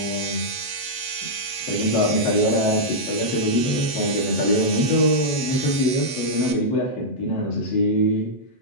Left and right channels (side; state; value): right; late; 7.0 ms